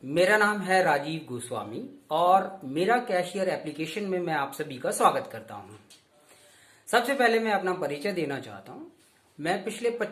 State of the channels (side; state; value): both; identical; correlation 1.00